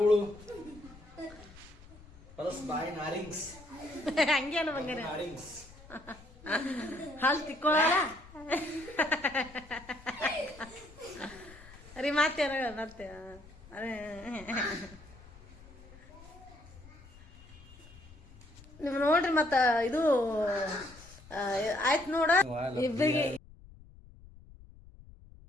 ಪ್ಲಸ್ ಬಾಯ್ ನಾರಿಂಗ್ಸ್. ಹಂಗೆ ಅಲ್ಲ ಬಂಗಾರ, ನಾರಿಂಗ್ಸ್ ಹಾಲು ತಿಕ್ಕೊಳ್ಳಲ್ಲ ರೀ. ಮತ್ತೆ ಮತ್ತೆ ಅದೇ ನೀವು ನೋಡ್ರಿ. ಮತ್ತ ಇದು ಆಯ್ತು ನೋಡ ಇಬ್ಬರಿಗೆ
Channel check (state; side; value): noise; left; rumble, 20 dB below the sound